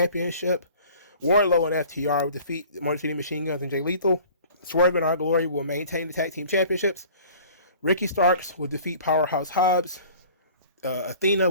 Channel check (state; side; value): inverted; both; correlation -0.47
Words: Wardlow and FTR will defeat Motor City Machine Guns and Jay Lethal. Swerve and Our Glory will maintain the tag team championships. Ricky Starks will defeat Powerhouse Hobbs. Athena